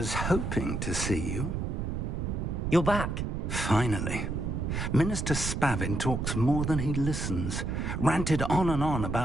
hoping to see you. You're back. Finally. Minister Spavin talks more than he listens. Ranted on and on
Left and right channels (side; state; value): right; noise; rumble, 2 dB below the sound